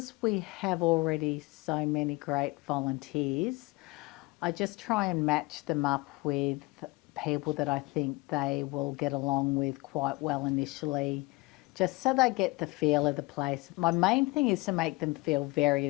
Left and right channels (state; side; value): quieter; right; 23.7 dB